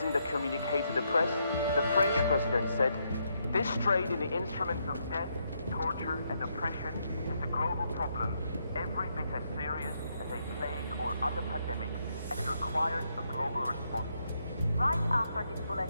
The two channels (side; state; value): both; inverted; correlation -0.77